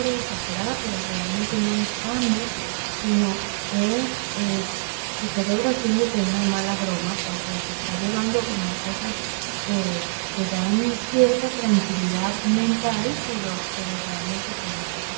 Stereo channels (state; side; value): silent; left; digital silence